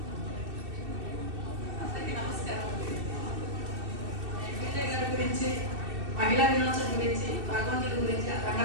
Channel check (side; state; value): left; late; 2.6 ms